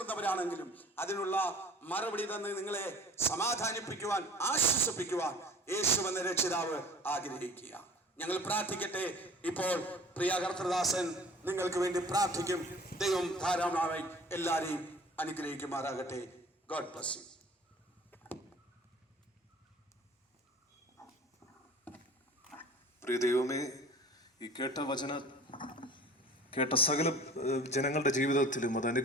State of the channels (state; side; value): normal; both; correlation 0.46